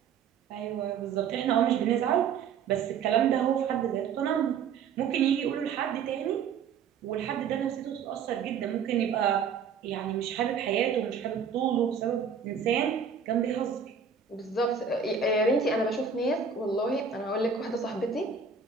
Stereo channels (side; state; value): left; quieter; 6.4 dB